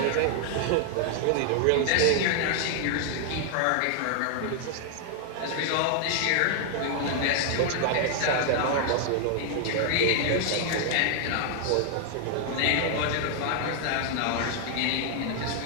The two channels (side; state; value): both; different; correlation 0.00